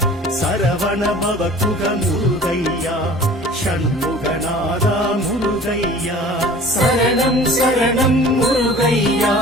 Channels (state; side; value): normal; both; correlation 0.45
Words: சரவண பவகுக முருகையா ஷண்முகநாதா முருகையா சரணம் சரணம் முருகையா